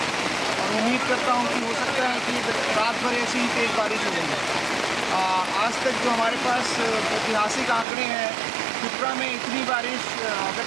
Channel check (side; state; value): left; drops out; at 7.9 s